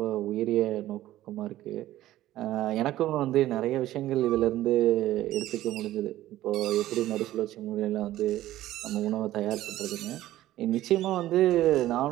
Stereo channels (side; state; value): left; quieter; 14.6 dB